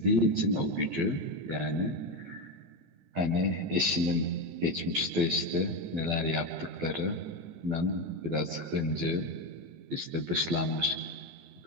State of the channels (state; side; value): late; left; 12 ms